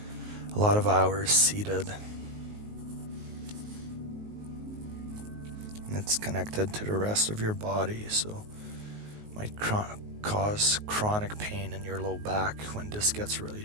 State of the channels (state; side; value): late; left; 19 ms